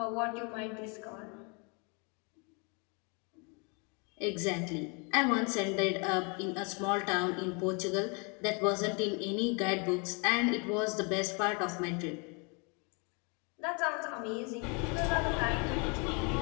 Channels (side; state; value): right; quieter; 33.1 dB